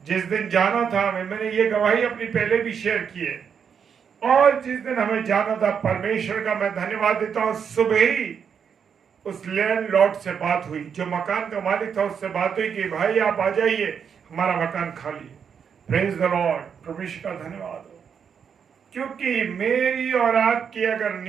जिस दिन जाना था, मैंने ये गवाही अपनी पहले भी शेयर की है, और जिस दिन हमें जाना था, परमेश्वर का मैं धन्यवाद देता हूं, सुबह ही उस लैंडलॉर्ड से बात हुई, जो मकान का मालिक था, उससे बात हुई कि भाई आप आ जाइए, हमारा मकान खाली है। Praise the Lord. परमेश्वर का धन्यवाद हो, क्योंकि मेरी और आपकी अगर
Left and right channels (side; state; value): left; quieter; 7.1 dB